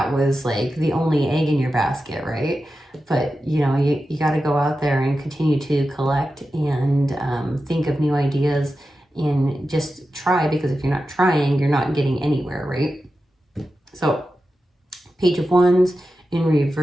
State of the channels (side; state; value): both; normal; correlation 0.92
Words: was like the only egg in your basket, right? But, you know, you got to go out there and continue to collect and think of new ideas and just try, because if you're not trying, you're not getting anywhere, right? So Page of Wands in